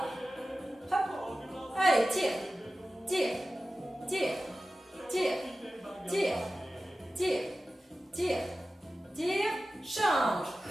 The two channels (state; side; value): normal; both; correlation 0.95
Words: Hop. Allez, tire. Tire. Tire. Tire. Tire. Tire. Tire. Tire. Change.